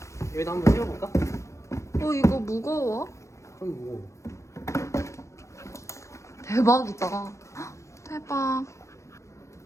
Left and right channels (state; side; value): late; right; 0.14 ms